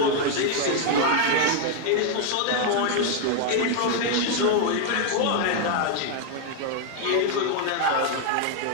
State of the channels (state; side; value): different; both; correlation 0.00